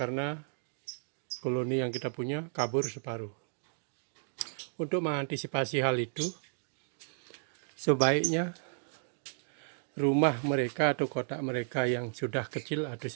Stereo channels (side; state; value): left; silent; digital silence